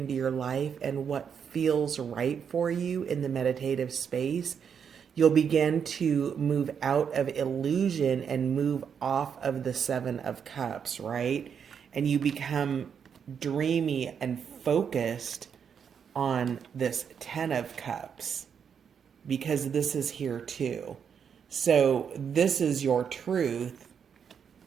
your life and what feels right for you in the meditative space, you'll begin to move out of illusion and move off of the Seven of Cups, right? And you become dreamy and focused on this Ten of Cups, because this is here too. So this is your truth.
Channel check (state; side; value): quieter; left; 7.3 dB